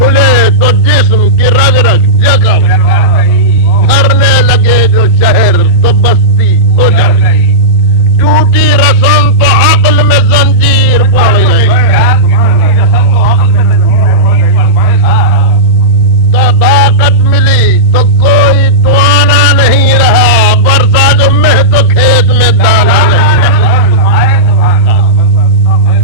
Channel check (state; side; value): normal; both; correlation -0.14